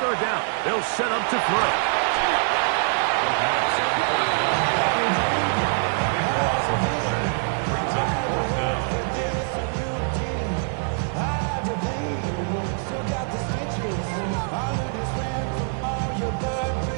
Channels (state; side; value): silent; left; 62 dB below the other